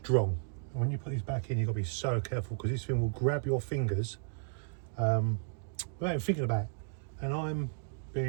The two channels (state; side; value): silent; left; digital silence